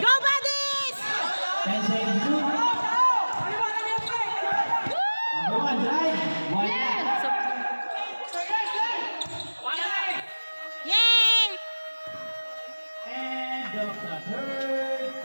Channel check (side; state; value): both; inverted; correlation -1.00